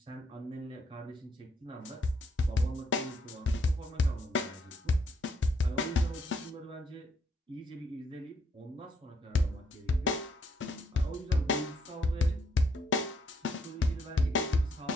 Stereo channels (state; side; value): normal; both; correlation 0.72